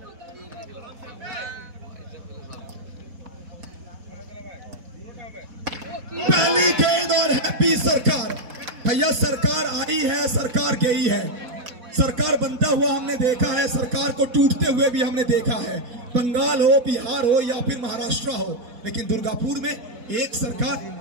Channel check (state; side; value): late; left; 4.1 ms